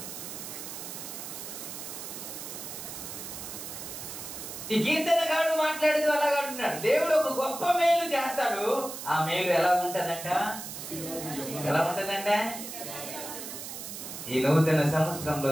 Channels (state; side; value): noise; right; hiss, 9 dB below the sound